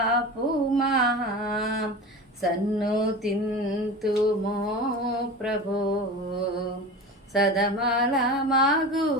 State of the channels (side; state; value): both; normal; correlation 0.31